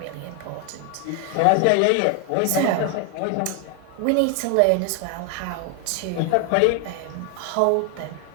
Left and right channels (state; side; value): different; both; correlation 0.00